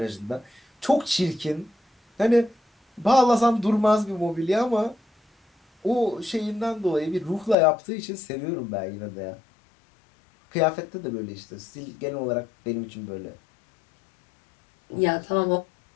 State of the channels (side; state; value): right; drops out; at 7.6 s